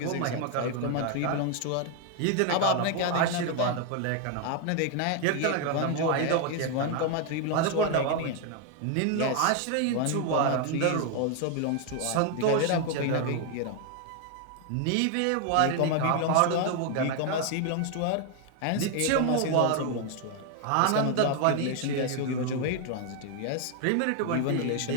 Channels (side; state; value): both; different; correlation 0.00